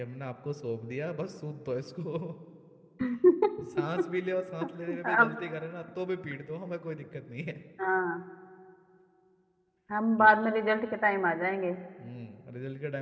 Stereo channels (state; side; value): identical; both; correlation 1.00